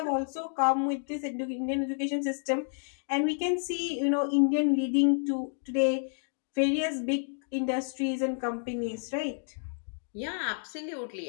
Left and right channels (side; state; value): right; silent; digital silence